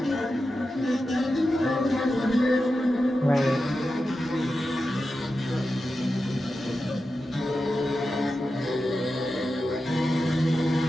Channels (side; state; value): both; normal; correlation 0.91